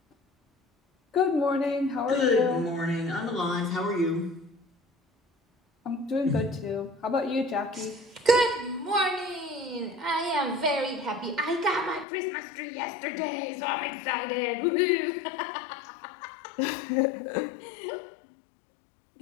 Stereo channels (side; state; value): right; drops out; at 12.1 s